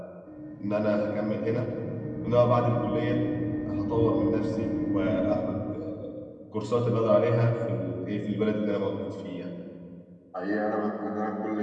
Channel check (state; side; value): identical; both; correlation 1.00